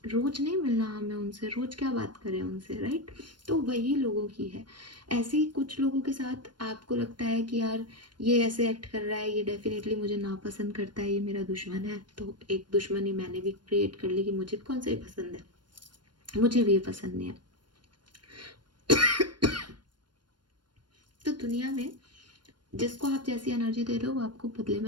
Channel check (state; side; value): late; left; 0.71 ms